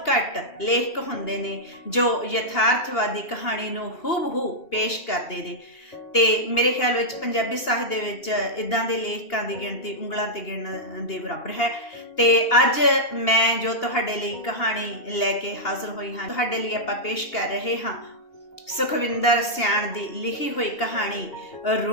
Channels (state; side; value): late; right; 2.8 ms